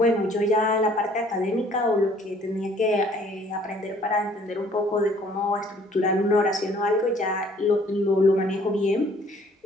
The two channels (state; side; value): normal; both; correlation 0.58